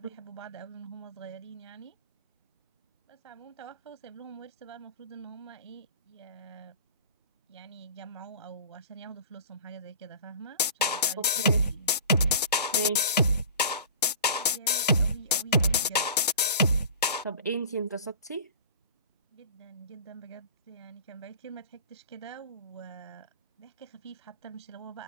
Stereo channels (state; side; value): inverted; both; correlation -0.40